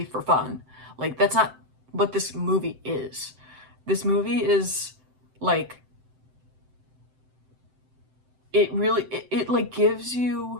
for fun. Like, that's not what this movie is. This movie is like, it like gives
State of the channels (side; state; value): left; late; 7.8 ms